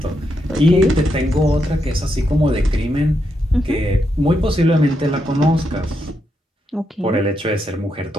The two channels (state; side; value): normal; both; correlation 0.82